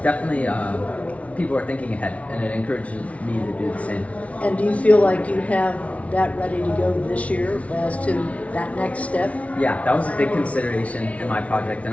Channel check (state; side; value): late; right; 0.065 ms